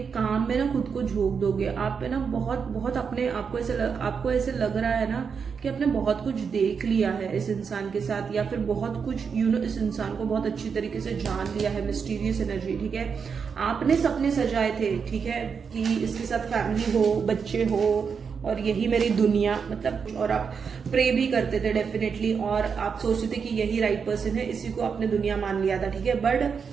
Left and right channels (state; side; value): quieter; left; 6.1 dB